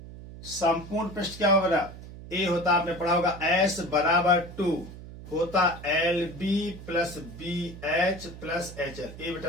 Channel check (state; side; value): noise; right; hum, 14 dB below the sound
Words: पृष्ठ क्या होगा, ए होता आपने पढ़ा होगा S बराबर 2 होता LB plus BH plus HL। ये